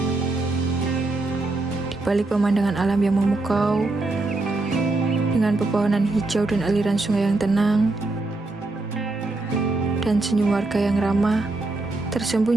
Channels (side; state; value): left; quieter; 3.1 dB